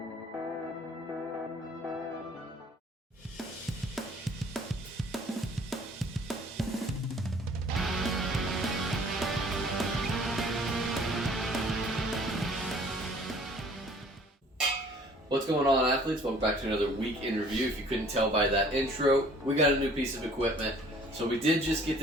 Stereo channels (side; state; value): both; normal; correlation 0.54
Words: What's going on, athletes? Welcome back to another week in review. If you couldn't tell by that intro, we got a new piece of equipment. So we did just get